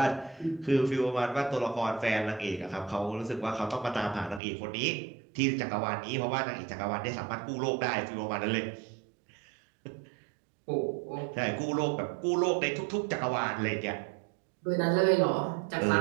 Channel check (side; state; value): left; drops out; at 4.4 s